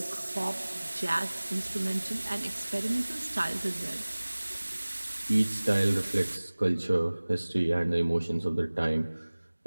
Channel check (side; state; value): both; inverted; correlation -1.00